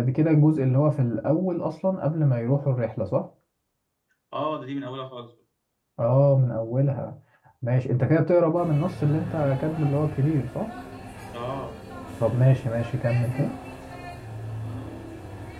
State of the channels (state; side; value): identical; both; correlation 1.00